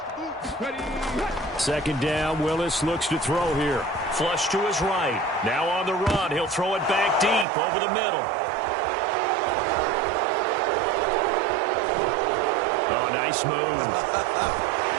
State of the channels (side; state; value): left; drops out; at 7.5 s